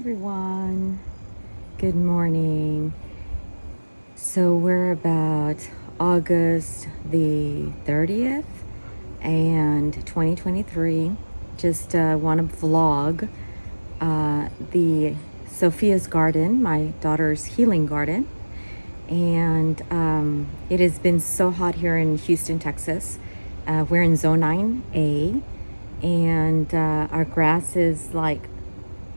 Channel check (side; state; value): both; inverted; correlation -1.00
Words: good morning. So we're about August the 30th and 2023. Just want to vlog the Sophia's garden, my daughter's healing garden. And it has been so hot here in Houston, Texas. We're in zone 9A, and our grass is like